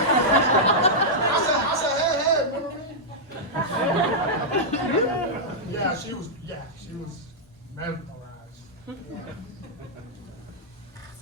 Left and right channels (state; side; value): normal; both; correlation -0.08